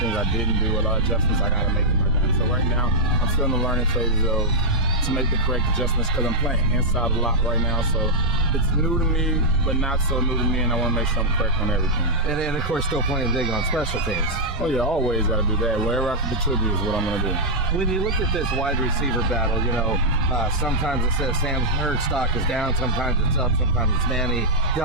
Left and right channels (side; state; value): both; normal; correlation -0.05